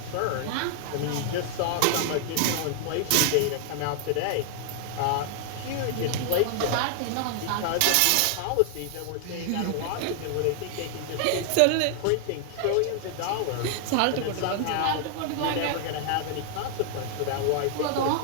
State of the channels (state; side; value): different; both; correlation 0.00